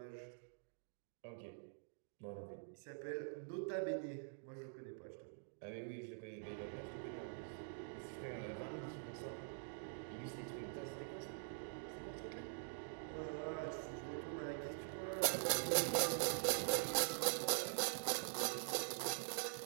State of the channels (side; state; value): left; silent; digital silence